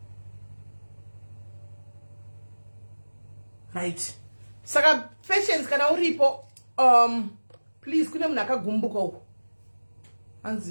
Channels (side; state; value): both; inverted; correlation -1.00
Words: right? Saka patience kana uripo please kune munhu akagumbuka uko